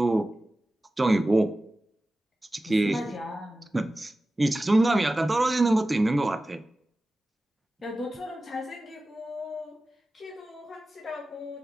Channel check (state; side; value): normal; both; correlation 0.95